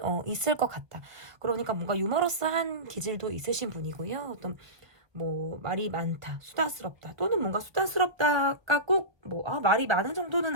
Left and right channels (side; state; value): left; late; 1.1 ms